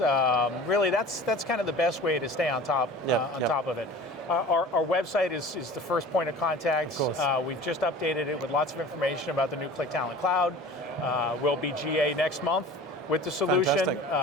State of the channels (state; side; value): normal; both; correlation 0.41